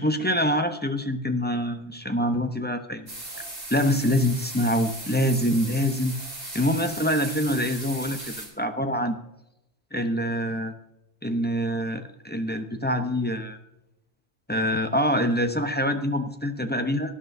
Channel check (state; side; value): normal; both; correlation 0.33